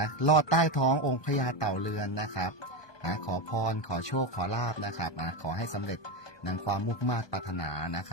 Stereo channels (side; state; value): right; late; 1.2 ms